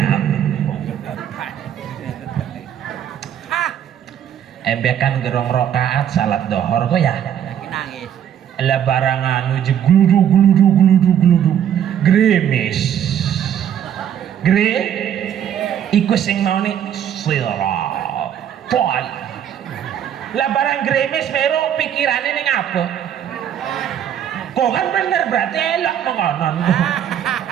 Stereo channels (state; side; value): quieter; left; 9.6 dB